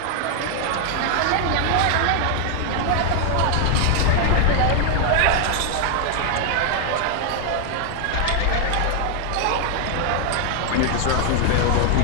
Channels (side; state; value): both; different; correlation 0.00